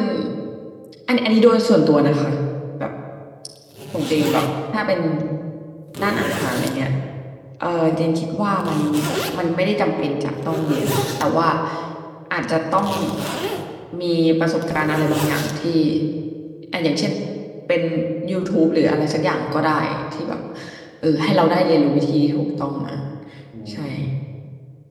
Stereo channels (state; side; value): identical; both; correlation 1.00